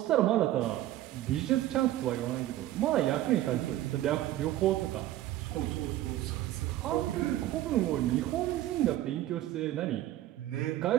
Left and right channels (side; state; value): left; quieter; 14.2 dB